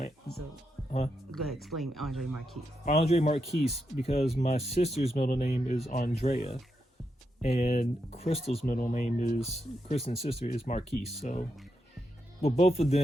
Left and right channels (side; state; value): both; normal; correlation 0.84